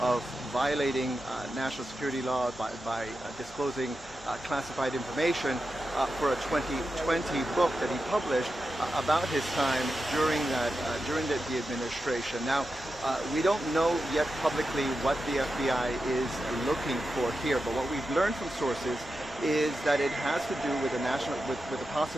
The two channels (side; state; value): both; normal; correlation 0.90